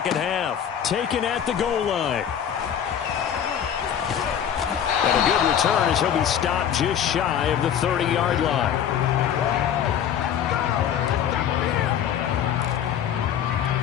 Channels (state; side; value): quieter; right; 9.1 dB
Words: half. Taken at the goal line. And a good return as he'll be stopped just shy of the 30-yard line.